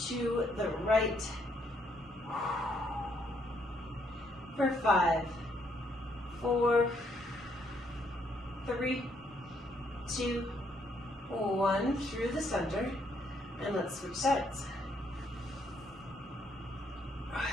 to the right. For 5, 4, 3, 2, 1, through the center, and let's switch sides.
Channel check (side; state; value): both; normal; correlation 0.72